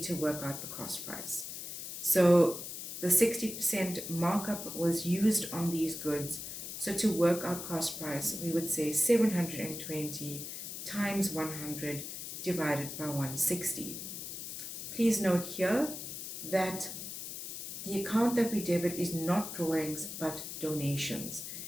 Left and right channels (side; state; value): left; noise; hiss, 8 dB below the sound